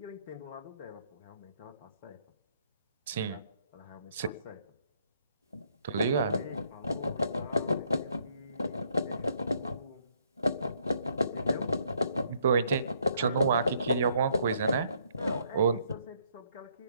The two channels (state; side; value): inverted; both; correlation -0.69